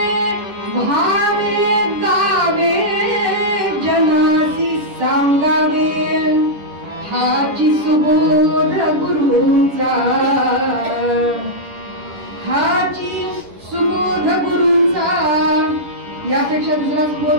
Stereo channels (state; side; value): late; left; 10 ms